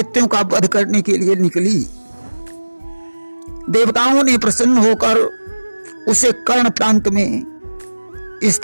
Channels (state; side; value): inverted; both; correlation -1.00